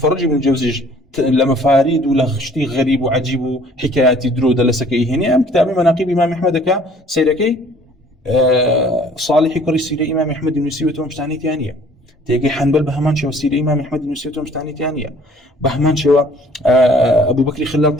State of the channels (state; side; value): normal; both; correlation 0.55